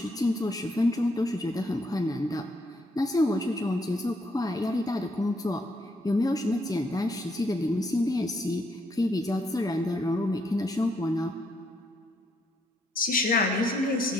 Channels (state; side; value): normal; both; correlation 0.74